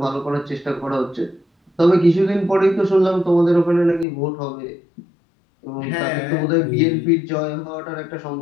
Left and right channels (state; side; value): drops out; right; at 4.0 s